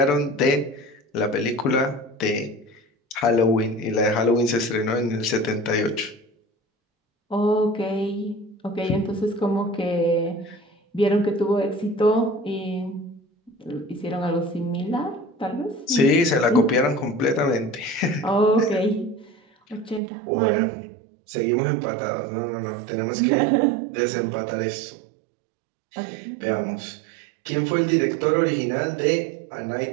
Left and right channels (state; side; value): drops out; left; at 20.0 s